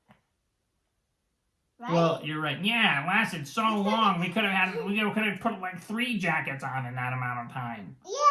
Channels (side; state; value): both; identical; correlation 1.00